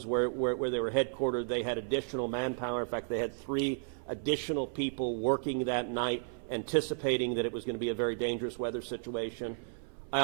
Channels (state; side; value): silent; left; 55 dB below the other